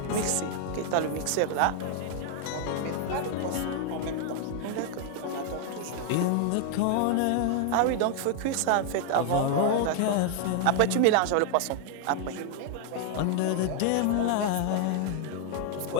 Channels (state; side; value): different; both; correlation 0.00